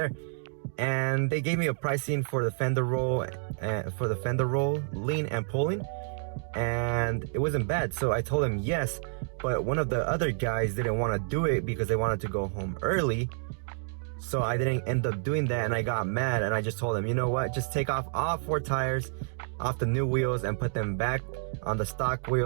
And they gave me a pricing for the fender roll, lean and pulling, and it wasn't bad. So I told him yes, but one of the other guys didn't want to do it because they wanted to go home early. So I didn't end up doing that, and I got mad, and I just told him, you know what, just take off all 4 tires off the new wheels and put them back on the stock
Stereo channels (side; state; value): left; silent; digital silence